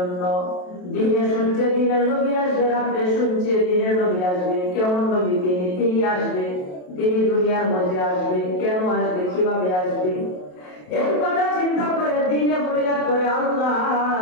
দিনে শুনছে দিনের নবী আসবে, রাতে শুনছে দিনের নবী আসবে। কেমন নবী তিনি আসবে, তিনি দুনিয়ার মধ্যে আসবে, কেন আসবে, কিভাবে আসবে, এর কথা চিন্তা করে দিনে ফরিয়াদ করে আল্লাহ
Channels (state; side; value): late; right; 27 ms